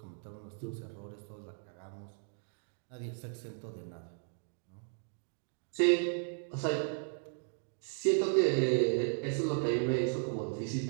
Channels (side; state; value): left; silent; digital silence